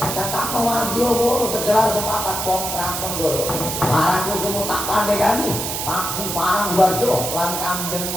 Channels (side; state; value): right; noise; hiss, 3 dB below the sound